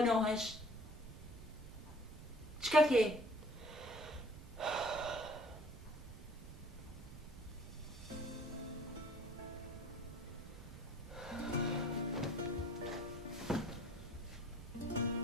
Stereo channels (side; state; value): right; noise; rumble, 14 dB below the sound